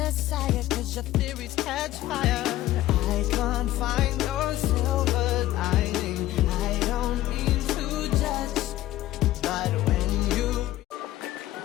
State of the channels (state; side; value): quieter; right; 15.0 dB